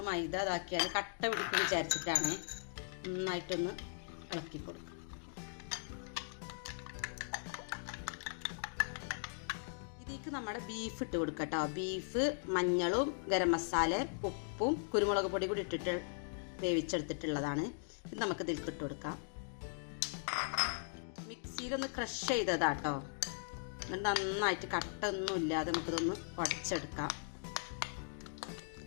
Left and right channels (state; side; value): silent; right; digital silence